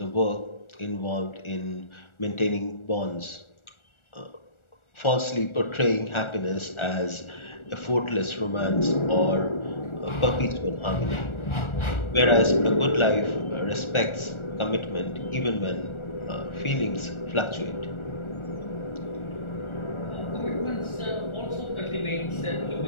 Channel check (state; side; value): late; right; 1.4 ms